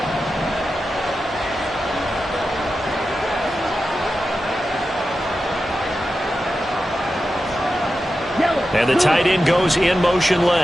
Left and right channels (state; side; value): normal; both; correlation 0.91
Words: And the tight end goes in motion